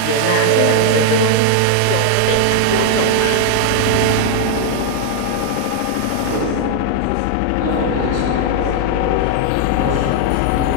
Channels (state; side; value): different; both; correlation 0.00